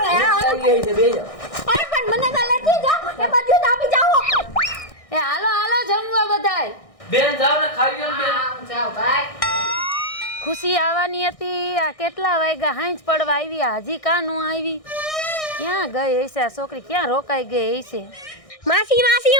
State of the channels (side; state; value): right; late; 1.6 ms